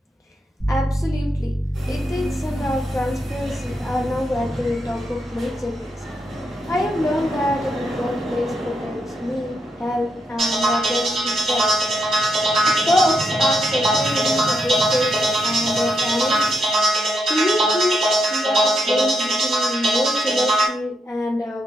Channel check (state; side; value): normal; both; correlation 0.81